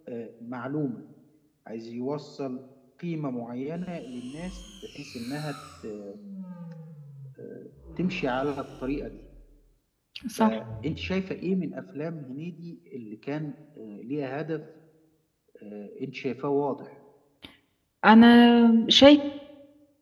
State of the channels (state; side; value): identical; both; correlation 1.00